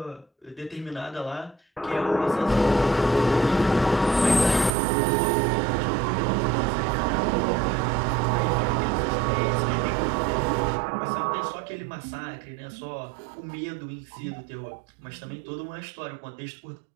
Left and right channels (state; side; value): drops out; left; at 4.7 s